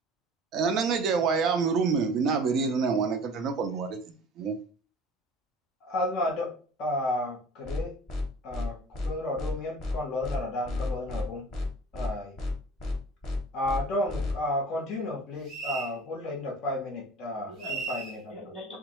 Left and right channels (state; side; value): normal; both; correlation 0.44